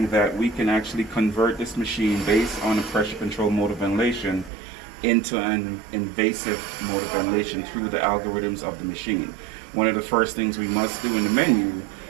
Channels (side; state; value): left; drops out; at 4.5 s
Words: that we can actually convert this machine based on a pressure control mode of ventilation into an invasive mode of ventilation through the algorithms of the machine. One of the first things we must do in the menu